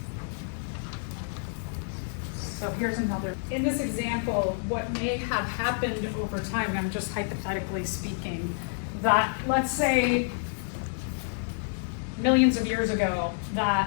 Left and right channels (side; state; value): right; silent; 59 dB below the other